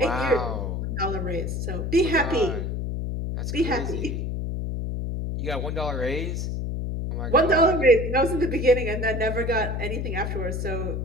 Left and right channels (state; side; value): noise; left; hum, 2 dB below the sound